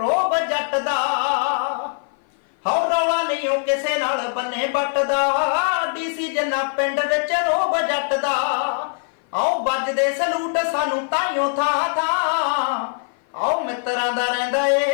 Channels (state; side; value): silent; right; 56 dB below the other